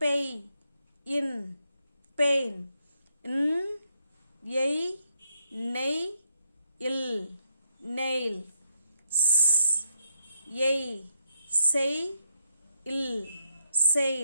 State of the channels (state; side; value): inverted; both; correlation -0.78